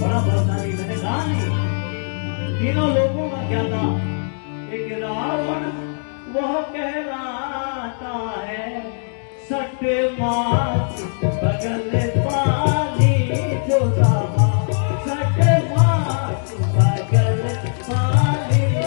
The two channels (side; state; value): right; silent; digital silence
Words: बलशाली, मैंने कहा नहीं, तीनों लोगों का क्या था? एक रावण वह कहलाता है, सट मास बगल पाली जो रामा, सट मास बगल पाली